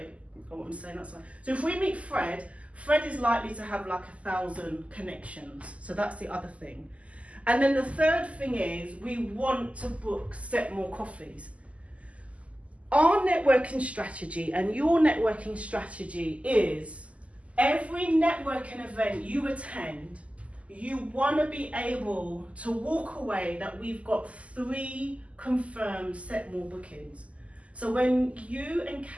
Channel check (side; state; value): left; late; 0.065 ms